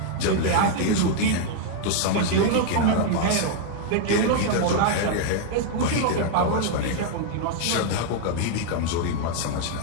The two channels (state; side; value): different; both; correlation 0.00